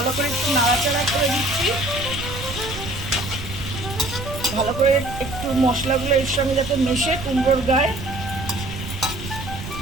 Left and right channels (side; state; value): right; noise; rumble, 9 dB below the sound